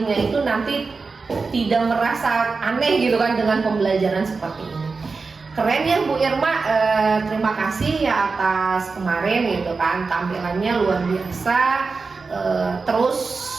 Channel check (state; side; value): quieter; left; 4.4 dB